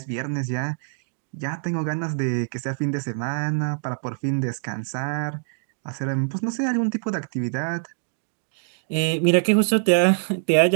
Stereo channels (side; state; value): left; silent; digital silence